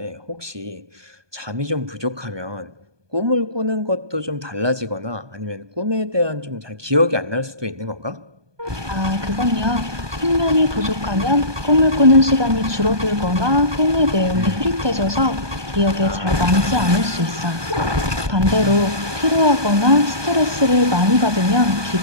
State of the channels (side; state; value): left; late; 1.2 ms